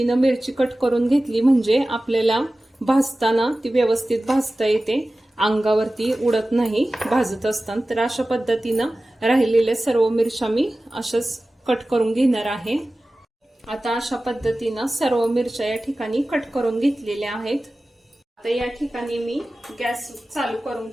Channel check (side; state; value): both; normal; correlation 0.96